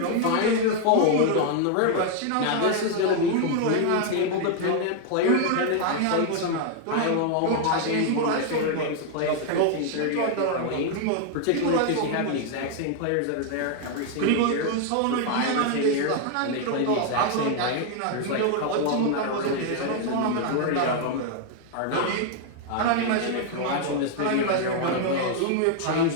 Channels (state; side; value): different; both; correlation 0.00